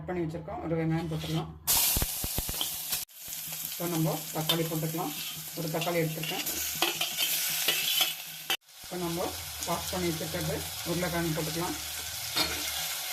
பண்ணி வச்சுருக்கோம். ஒரு வெங்காயம் போட்டுக்கலாம். இப்போ நம்ம தக்காளி போட்டுக்கலாம். ஒரு தக்காளி எடுத்துருக்கேன். இப்போ நம்ம வாஷ் பண்ணி வச்சுருக்கிறது உருளைக்கிழங்கு போட்டுக்கலாம்.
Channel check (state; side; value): identical; both; correlation 1.00